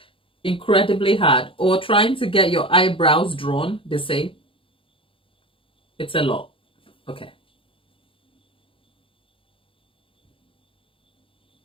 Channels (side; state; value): right; late; 0.26 ms